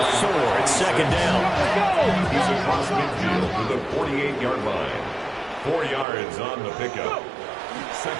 4 at second down. He's across midfield to the 48-yard line. 4 yards on the pickup.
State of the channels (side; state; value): left; drops out; at 6.1 s